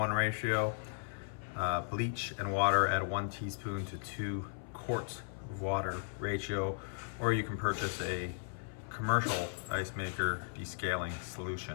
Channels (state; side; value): silent; right; 54 dB below the other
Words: ratio, bleach and water at a 1 teaspoon to 2 quarts of water ratio, or you can purchase a commercial ice maker descaling